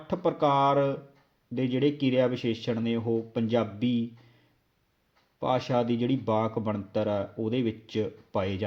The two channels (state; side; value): identical; both; correlation 1.00